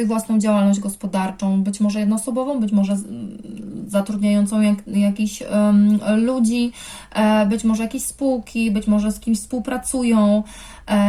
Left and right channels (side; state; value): both; identical; correlation 1.00